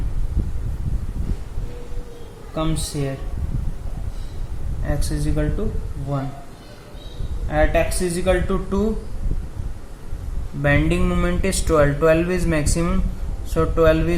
comes here, x is equal to 1. At x is equal to 2, bending moment is 12, 12 is maximum, so 12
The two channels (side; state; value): both; identical; correlation 1.00